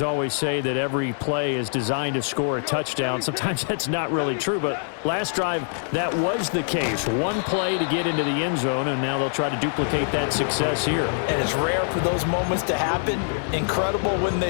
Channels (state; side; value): silent; right; digital silence